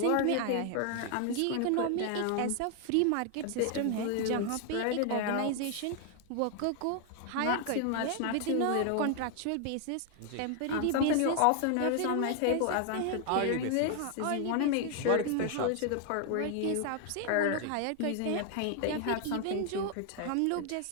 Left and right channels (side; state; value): both; different; correlation 0.00